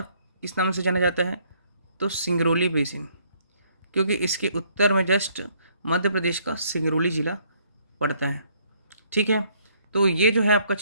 किस नाम से जाना जाता है? तो सिंगरौली बेसिन, क्योंकि इसके उत्तर में जस्ट मध्य प्रदेश का सिंगरौली जिला पड़ता है। ठीक है, तो ये जो है आपका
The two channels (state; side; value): inverted; both; correlation -0.66